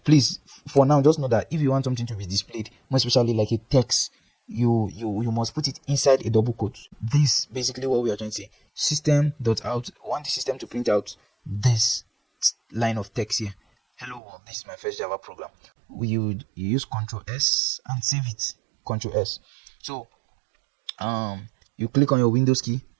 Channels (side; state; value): left; drops out; at 14.2 s